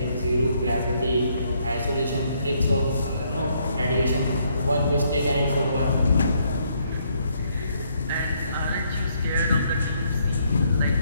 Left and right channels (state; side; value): inverted; both; correlation -0.71